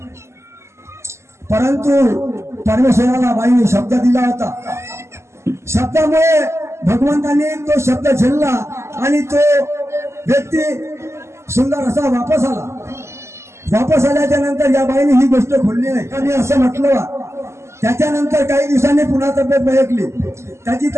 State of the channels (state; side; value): late; left; 0.13 ms